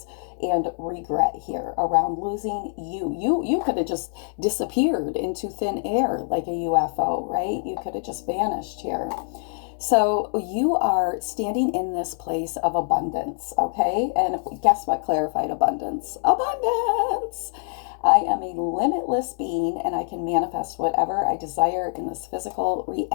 and regret here around losing you. You could have just disappeared into thin air like a UFO, right? You could have just vanished here. So you are standing in this place of abundance, okay? And guess what clarified abundance? Abundance! I am a limitless being and I can manifest whatever I desire in this physical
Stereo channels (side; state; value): right; silent; digital silence